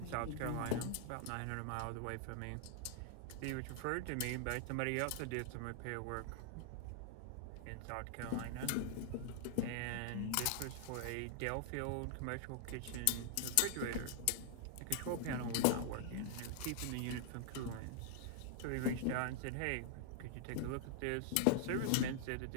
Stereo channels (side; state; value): both; different; correlation -0.01